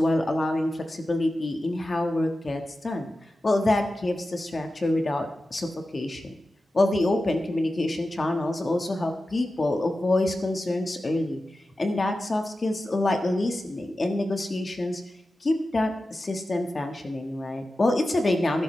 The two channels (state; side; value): normal; both; correlation 0.93